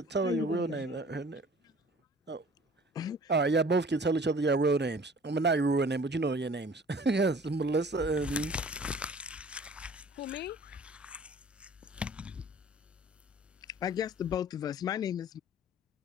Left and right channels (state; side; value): normal; both; correlation 0.49